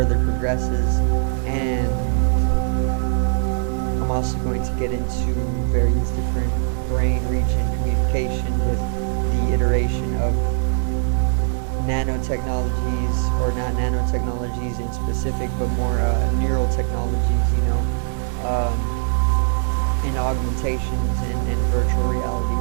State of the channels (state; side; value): silent; left; digital silence